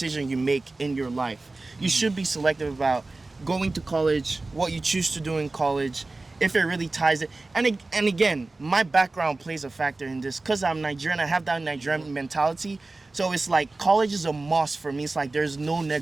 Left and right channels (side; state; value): left; quieter; 3.3 dB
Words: you make in your life. You should be selective about going to college, what you choose to do in college, if it really ties it. And again, my background plays a factor in this, because I'm Nigerian. I have that Nigerian mentality. So it's like college is a must for me. It's like there's no